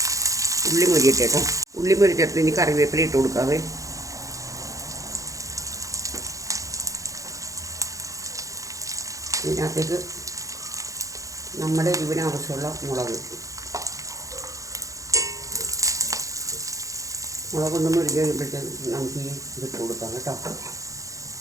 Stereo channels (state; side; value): late; left; 0.16 ms